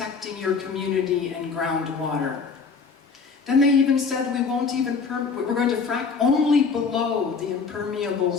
your community and groundwater. Then they even said we're going to frack only below the impermeable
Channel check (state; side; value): quieter; right; 5.1 dB